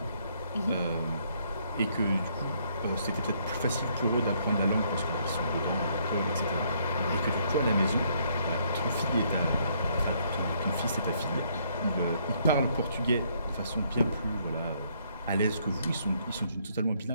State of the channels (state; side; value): inverted; both; correlation -0.69